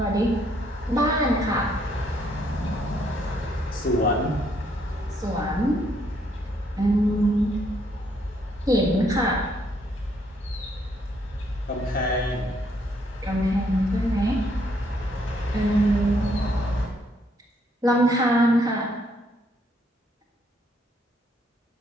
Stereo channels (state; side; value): normal; both; correlation 0.70